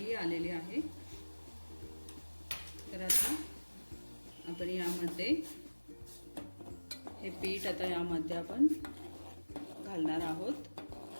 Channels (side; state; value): both; inverted; correlation -1.00